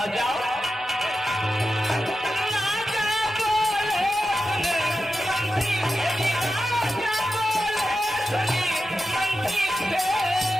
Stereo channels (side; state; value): both; normal; correlation 0.91